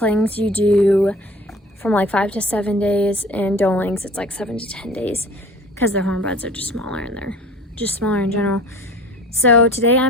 you do from like 5 to 7 days, and doelings it's like 7 to 10 days because their horn buds are just smaller and they're just smaller in general. So today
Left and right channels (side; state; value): both; normal; correlation 0.45